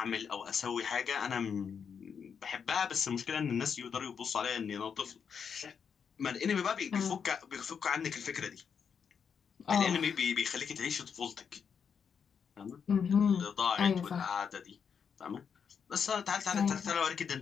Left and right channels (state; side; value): quieter; right; 6.8 dB